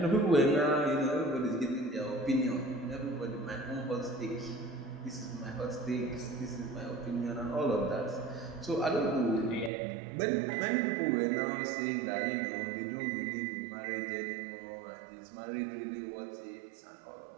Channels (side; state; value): left; drops out; at 9.7 s